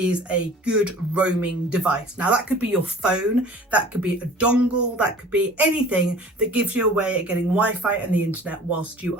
a good roaming device. Now that could be your phone, that could be a dongle, that could be anything that gives you a way of getting Wi-Fi and the internet whilst you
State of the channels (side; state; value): both; normal; correlation 0.46